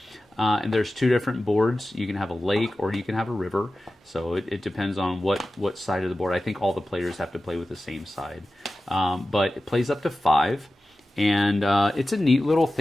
And there's two different boards. You can have a lake or you can have a river, so it depends on what side of the board. I think all the players have to play with the same side, but it plays up to 5. And it's a neat little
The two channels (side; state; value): both; normal; correlation 0.94